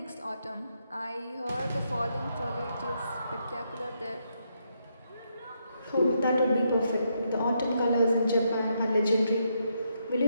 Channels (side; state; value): both; inverted; correlation -0.79